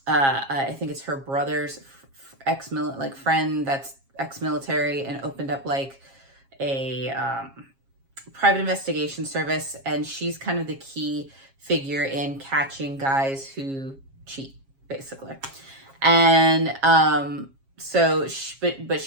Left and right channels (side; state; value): left; late; 7.4 ms